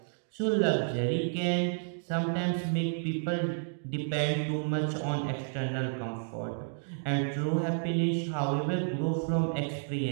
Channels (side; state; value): left; silent; digital silence